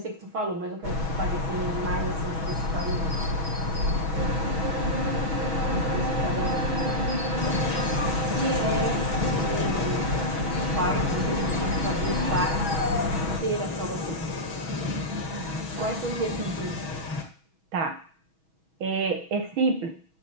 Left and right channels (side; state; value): left; late; 6.2 ms